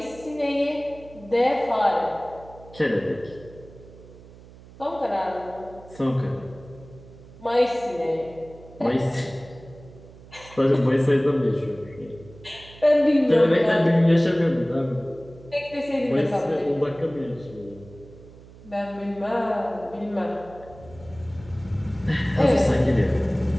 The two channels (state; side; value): noise; right; hum, 20 dB below the sound